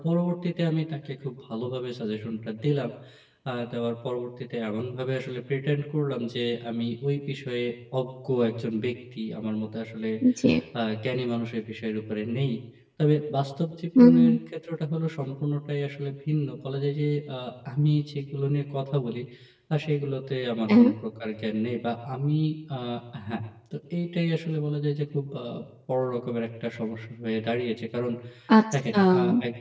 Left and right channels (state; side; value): identical; both; correlation 1.00